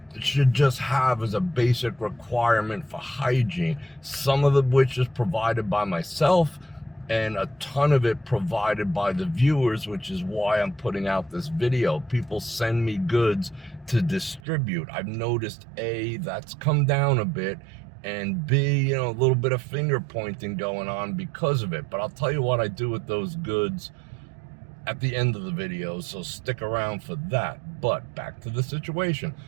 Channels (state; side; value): drops out; left; at 14.4 s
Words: should just have as a basic requirement for hygiene. Some of which is provided by myself, and a ton of it provided by the viewers, which is why I'm putting out this video. People send me goods to distribute. I've noticed A, that's come down a bit, and B, a little bit of finger pointing going on because of it. But I'll tell you what I do with those goods at the end of the video, so stick around for that. But back to the situation.